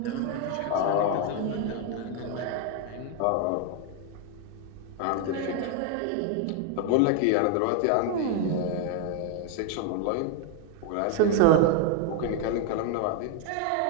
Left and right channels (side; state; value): both; different; correlation 0.01